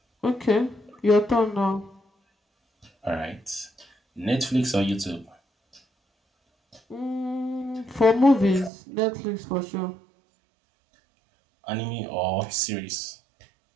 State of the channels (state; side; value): drops out; left; at 8.7 s